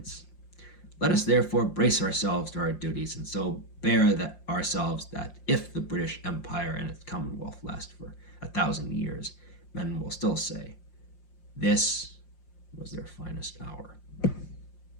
Let us therefore brace ourselves to our duties, and so bear ourselves that if the British Empire and its Commonwealth last for 1,000 years, men will still say, this was their finest hour.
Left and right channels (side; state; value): right; late; 5.7 ms